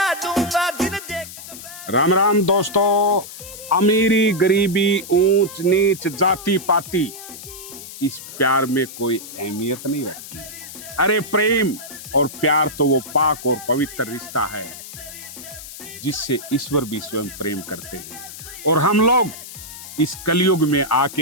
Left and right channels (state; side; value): noise; left; hiss, 13 dB below the sound